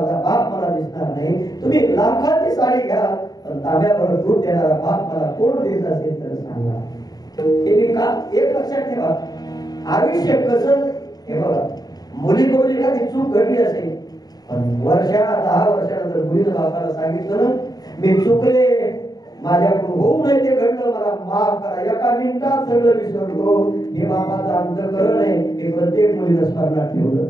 बाप मला दिसणार नाही. तुम्ही लाखाची साडी घ्या पण तांब्याभर दूध देणारा बाप मला कोण देत असेल तर सांगा. हे मी का एक लक्षात ठेवा, आयुष्य कसं हे बघा, मुलीकडून एखादी चूक घडली असेल पण 10 वर्षानंतर मुलीनं बापाला सांगितलं ना, मी चुकले, माझ्याकडून होऊ नये ते घडलं, मला माफ करा, एका मिनिटात सगळं विसरलो. हे बापाचं अंतःकरण आहे, हे प्रत्येक मुलीनं स्मरणात ठेवलं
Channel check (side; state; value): right; late; 0.19 ms